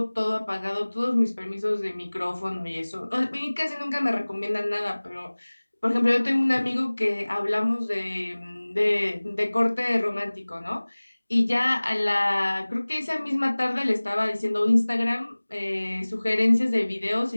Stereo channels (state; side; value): inverted; both; correlation -1.00